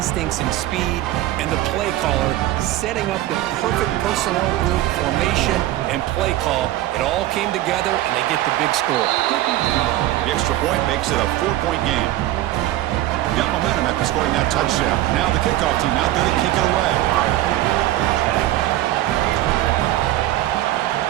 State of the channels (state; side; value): quieter; left; 14.9 dB